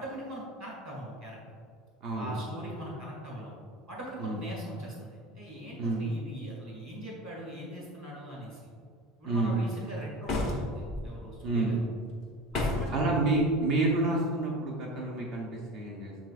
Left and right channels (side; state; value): both; normal; correlation 0.32